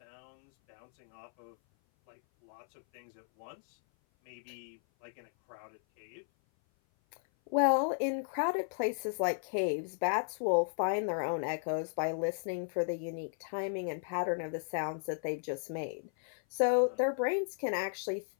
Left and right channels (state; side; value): silent; right; 54 dB below the other